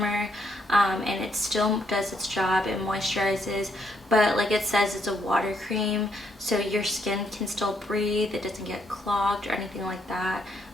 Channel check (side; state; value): both; normal; correlation 0.74